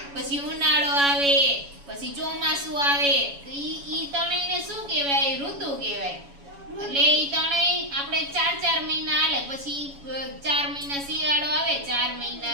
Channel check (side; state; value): left; late; 7.1 ms